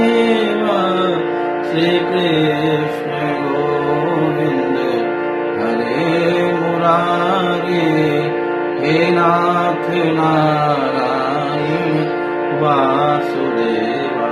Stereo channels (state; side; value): identical; both; correlation 1.00